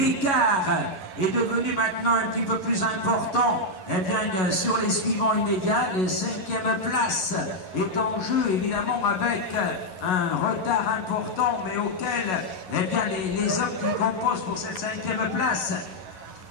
est devenu maintenant un petit peu plus important sur les suivants immédiats. La 5e place est en jeu, évidemment, avec un retard important, mais auquel les hommes qui composent pour cette 5e place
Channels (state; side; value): late; right; 11 ms